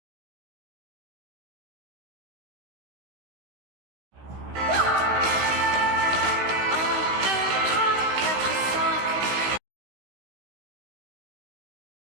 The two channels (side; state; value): left; late; 16 ms